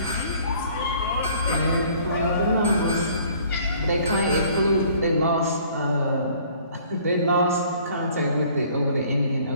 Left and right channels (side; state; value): both; inverted; correlation -0.56